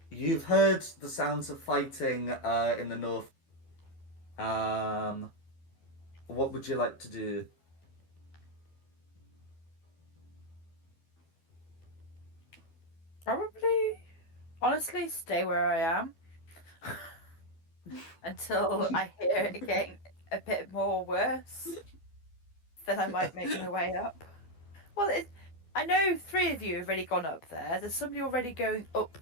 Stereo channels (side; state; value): right; late; 12 ms